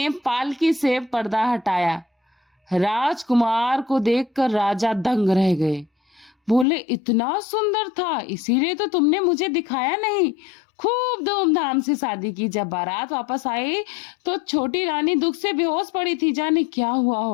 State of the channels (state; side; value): drops out; right; at 6.7 s